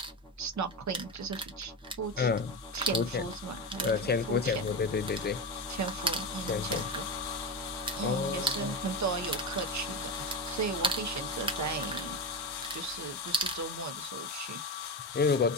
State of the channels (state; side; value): normal; both; correlation 0.18